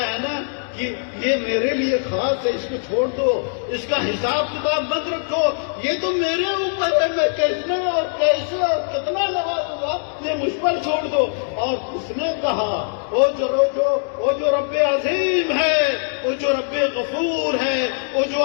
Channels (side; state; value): right; silent; digital silence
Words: نا کہ یہ میرے لیے خاص ہے، اس کو چھوڑ دو، اس کا حساب کتاب مت رکھو، یہ تو میرے اوپر ہے، میں کتنا اور کیسے اور کتنا نوازوں گا، یہ مجھ پر چھوڑ دو. اور اس نے کہا وہ جو رب عظیم ہے، وہ جو رب غفور ہے، وہ جو